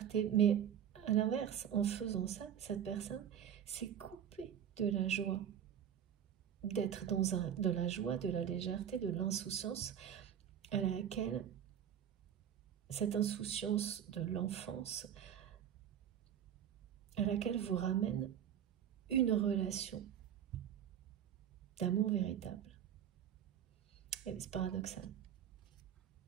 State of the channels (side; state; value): left; quieter; 9.4 dB